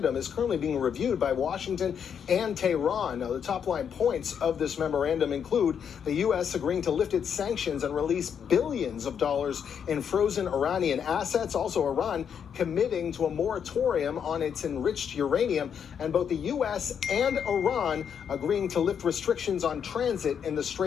is currently being reviewed by Washington and Tehran. Now, the top-line points of this memorandum include the U.S. agreeing to lift its sanctions and release billions of dollars in frozen Iranian assets. Also, Iran committing to a moratorium on its enriched uranium, and both the U.S. and Iran agreeing to lift restrictions on transit in the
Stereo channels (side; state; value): right; quieter; 7.7 dB